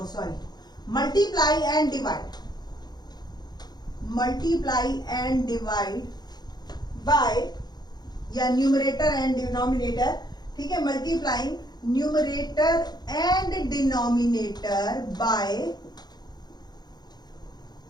multiply and divide by या न्यूमरेटर एंड डिनोमिनेटर, ठीक है, multiplying numerator and denominator by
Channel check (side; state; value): right; late; 0.20 ms